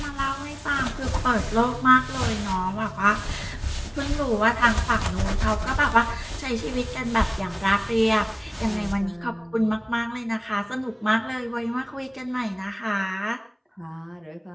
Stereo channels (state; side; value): identical; both; correlation 1.00